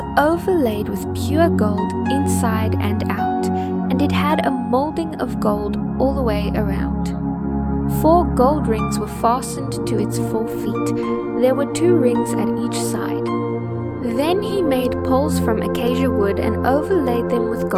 overlaid with pure gold inside and out, and it had a molding of gold all the way around. 4 gold rings were fastened to its 4 feet. There were 2 rings at each side. Then he made poles from acacia wood and overlaid them with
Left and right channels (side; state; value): both; identical; correlation 1.00